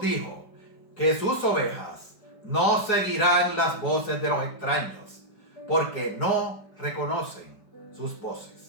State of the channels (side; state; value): right; late; 4.7 ms